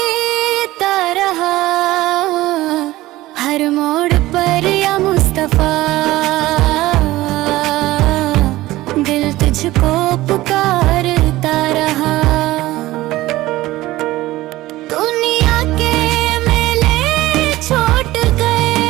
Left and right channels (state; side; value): quieter; left; 17.3 dB